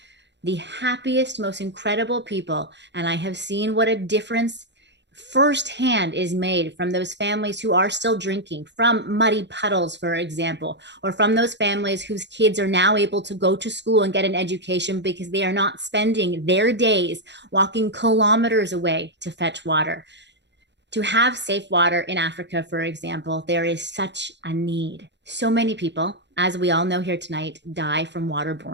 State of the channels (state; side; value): late; left; 0.51 ms